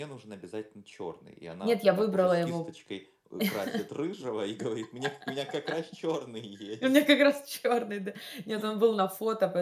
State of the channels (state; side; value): identical; both; correlation 1.00